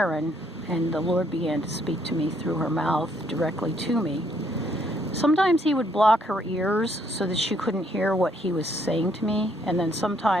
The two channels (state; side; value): normal; both; correlation 0.69